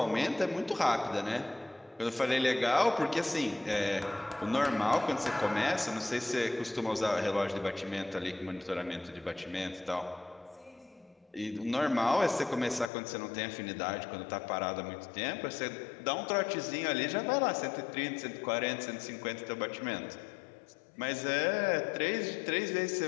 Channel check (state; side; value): drops out; right; at 12.9 s